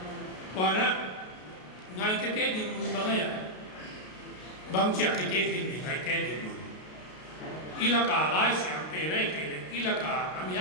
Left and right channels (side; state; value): right; late; 33 ms